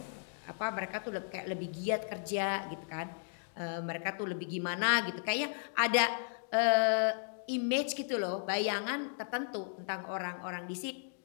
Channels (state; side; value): silent; right; digital silence